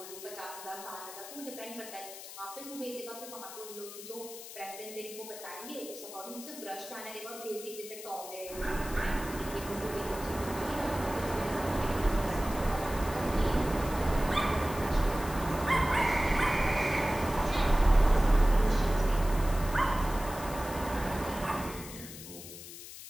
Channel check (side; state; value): left; noise; hiss, 13 dB below the sound